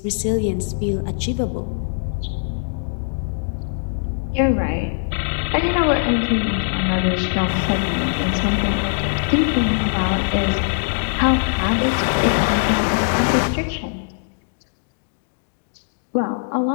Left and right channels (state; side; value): silent; right; digital silence